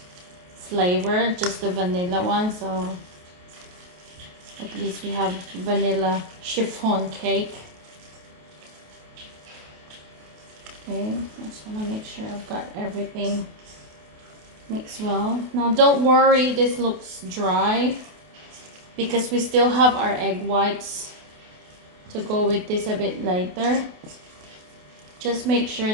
flavor, just the vanilla one, so at least we have vanilla chiffon cake. Okay, I just want to make sure I've got everything mixed well. Now don't worry, this looks dry because we still have our egg whites to go with this a bit later. Just make sure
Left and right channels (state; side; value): late; left; 28 ms